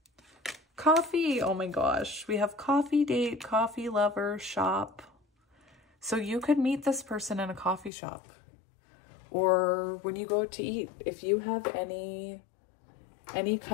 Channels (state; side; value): drops out; right; at 7.9 s